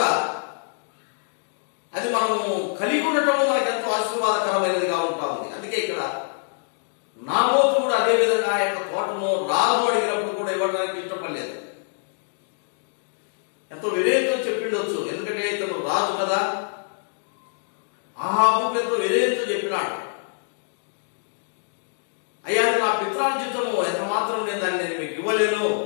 అది మనము కలిగి ఉండటము మనకు ఎంతో ఆశీర్వాదకరమైనదిగా ఉంటా ఉంది. అందుకే ఇక్కడ నాబోతు కూడా అదే విధంగా ఆ యొక్క తోటను రాజు అడిగినప్పుడు కూడా ఇవ్వడానికి ఇష్టపడలేదు. ఎంతో వినయంతో చెప్పిండొచ్చు, ఎందుకంటే ఇతను రాజు కదా. ఆహాబు ఎంతో వినయంతో చెప్పినాడు, అయ్యా నా పిత్రార్జితము ఎంత మాత్రం నేను దాన్ని మీకు ఇవ్వలేను.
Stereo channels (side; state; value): right; silent; digital silence